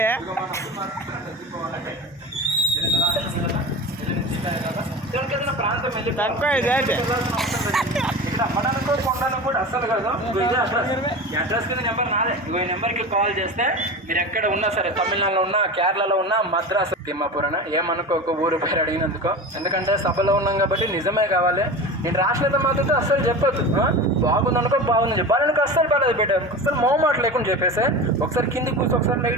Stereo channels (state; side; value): normal; both; correlation 0.30